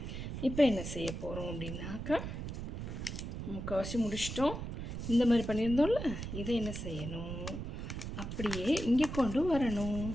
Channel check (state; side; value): noise; right; rumble, 6 dB below the sound